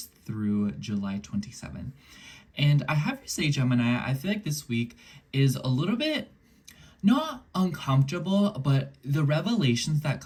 through July 27th. And I have to say, Gemini, I feel like this week is a little bit not uncomfortable, but the revelations that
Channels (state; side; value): identical; both; correlation 1.00